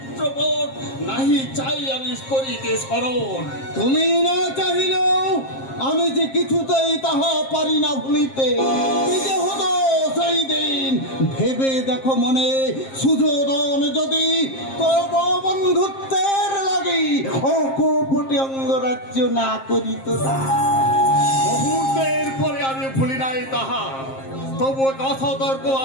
নাহি চাই আমি করিতে স্মরণ। তুমি না চাহিলেও আমি যে কিছুতেই তাহা পারি না ভুলিতে। কি যে হতো সেই দিন ভেবে দেখো মনে, সুযোধন যদি তব বন্ধুত্বের লাগি অকপটে অঙ্গরাজ্য না করিত না। মুহূর্তের পরে আমি ভুলি নাই তাহা, তবু কথা তর্ক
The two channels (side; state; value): right; late; 7.5 ms